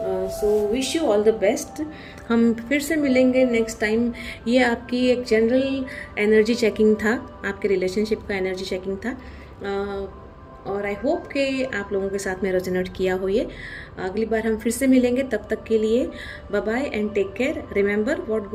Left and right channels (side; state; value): both; identical; correlation 1.00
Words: So wish you all the best. हम फिर से मिलेंगे नेक्स्ट टाइम। ये आपकी एक जनरल एनर्जी चेकिंग था, आपके रिलेशनशिप का एनर्जी चेकिंग था, और आई होप कि आप लोगों के साथ में रेजोनेट किया हो ये। अगली बार हम फिर से मिलेंगे, तब तक के लिए bye bye and take care. Remember what